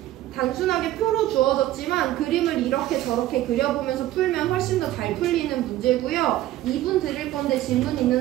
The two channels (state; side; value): quieter; left; 14.4 dB